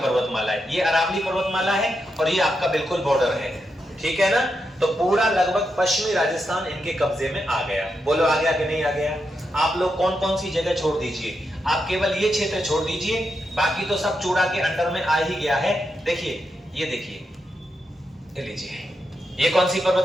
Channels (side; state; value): both; normal; correlation 0.85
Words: पर्वतमाला है। ये अरावली पर्वतमाला है और ये आपका बिल्कुल बॉर्डर है, ठीक है ना। तो पूरा लगभग पश्चिमी राजस्थान इनके कब्जे में आ गया। बोलो आ गया कि नहीं आ गया? आप लोग कौन कौन सी जगह छोड़ दीजिए, आप केवल ये क्षेत्र छोड़ दीजिए, बाकी तो सब चूड़ा के अंडर में आ ही गया है। देखिए ये देखिए, ये लीजिए, ये कौन सी